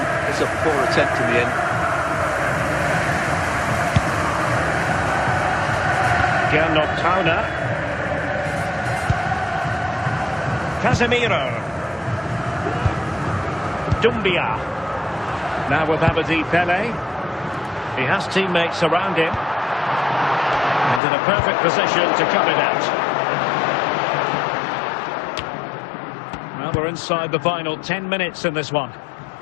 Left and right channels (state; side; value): drops out; right; at 21.0 s